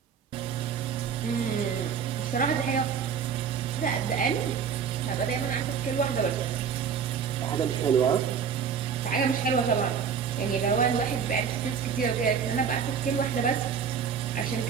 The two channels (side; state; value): left; quieter; 7.0 dB